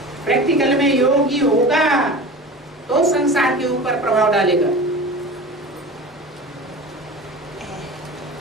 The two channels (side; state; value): both; normal; correlation 0.34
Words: प्रैक्टिकल में योगी होगा तो संसार के ऊपर प्रभाव डालेगा।